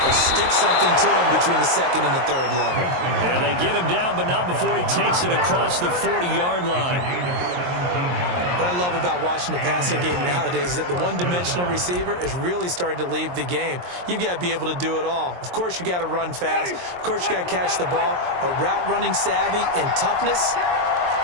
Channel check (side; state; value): left; late; 23 ms